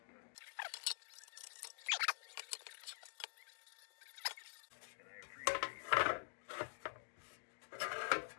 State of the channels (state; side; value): silent; right; digital silence